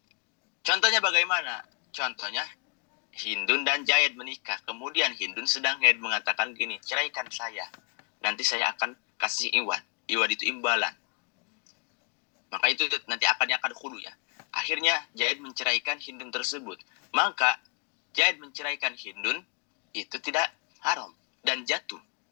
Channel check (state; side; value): quieter; right; 33.7 dB